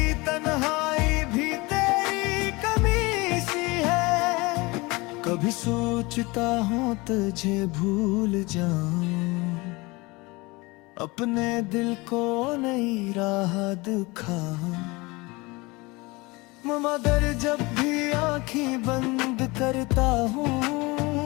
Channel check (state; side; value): quieter; right; 24.1 dB